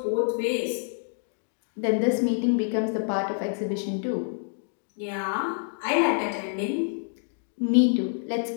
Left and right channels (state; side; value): silent; right; digital silence